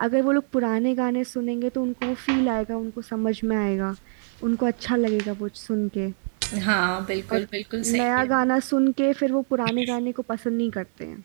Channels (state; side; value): silent; left; digital silence